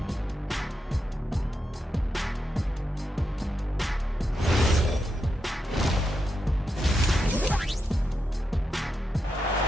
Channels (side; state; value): both; normal; correlation 0.85